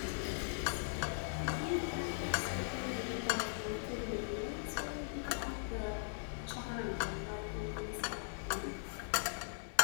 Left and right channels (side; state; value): right; silent; 51 dB below the other